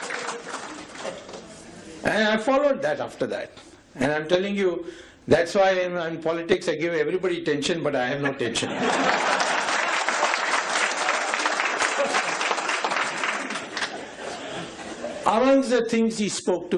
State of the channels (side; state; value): both; identical; correlation 1.00